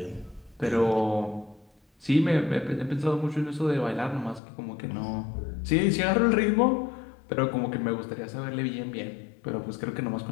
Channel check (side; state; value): right; drops out; at 4.4 s